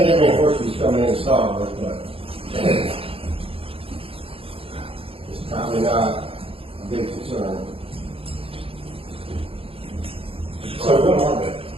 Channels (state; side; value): late; left; 0.27 ms